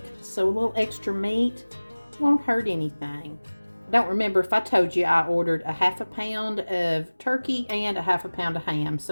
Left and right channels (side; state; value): both; inverted; correlation -1.00